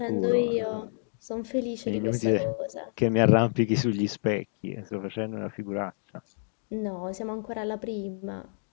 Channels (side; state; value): right; silent; digital silence